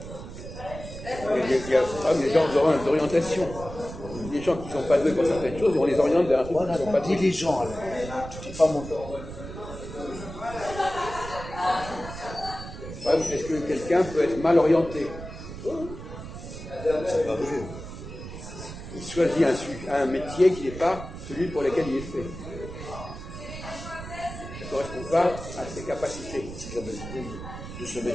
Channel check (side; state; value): right; noise; rumble, 11 dB below the sound